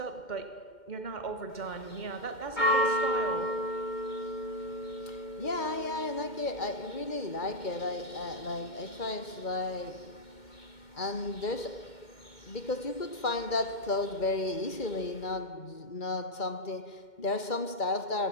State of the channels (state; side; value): late; right; 2.1 ms